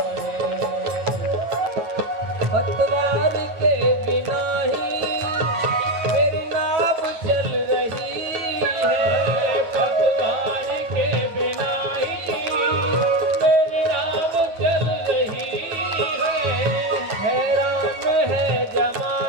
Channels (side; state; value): left; late; 9.2 ms